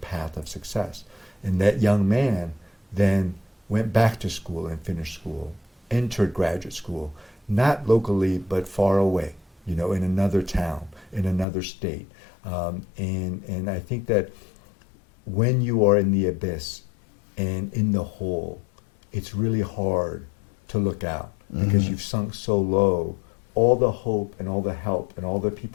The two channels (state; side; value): drops out; right; at 11.5 s